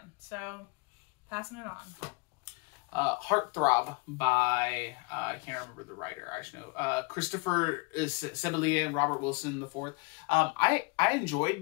So, passing it on. Heartthrob by, I can't remember the writer, I should know. Christopher Sebelier and Robert Wilson IV. I enjoyed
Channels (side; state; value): right; quieter; 28.9 dB